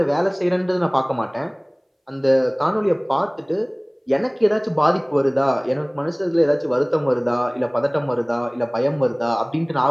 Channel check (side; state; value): both; identical; correlation 1.00